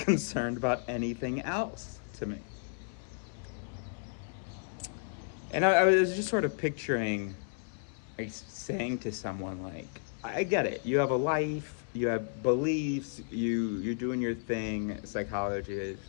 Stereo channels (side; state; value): right; silent; 56 dB below the other